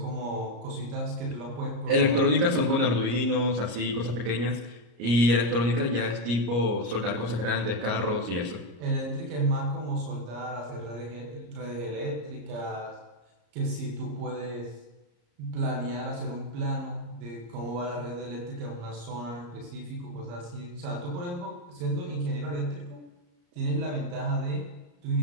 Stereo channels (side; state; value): left; late; 34 ms